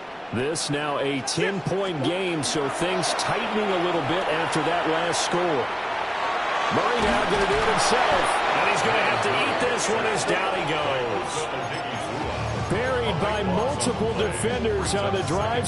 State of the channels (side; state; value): both; identical; correlation 1.00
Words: This now a 10-point game, so things tightening a little bit after that last score. Murray now going to do it himself, and he's going to have to eat this one as down he goes. Buried by multiple defenders on the